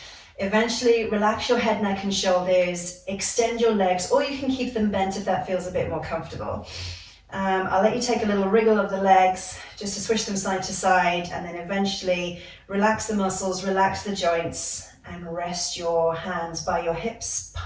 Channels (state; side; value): identical; both; correlation 1.00